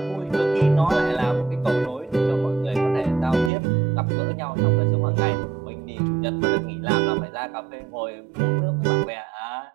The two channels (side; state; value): left; drops out; at 3.5 s